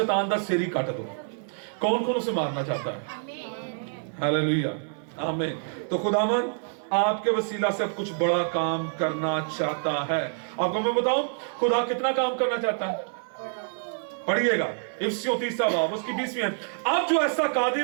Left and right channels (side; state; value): left; silent; 57 dB below the other